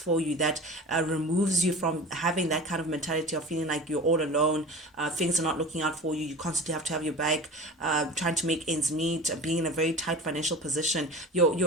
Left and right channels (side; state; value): both; normal; correlation 0.35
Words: you, that removes you from having that kind of mentality of feeling like you're all alone, things are not looking out for you, you constantly have to have your back, trying to make ends meet, being in a very tight financial position.